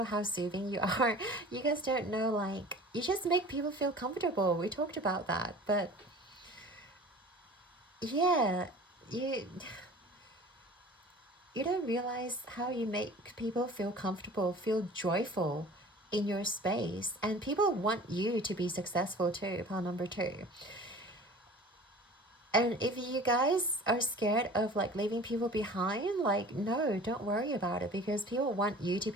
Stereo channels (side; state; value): both; normal; correlation 0.43